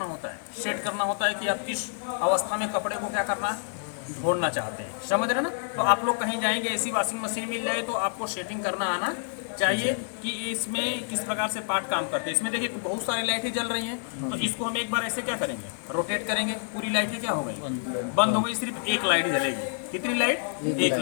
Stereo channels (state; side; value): silent; right; digital silence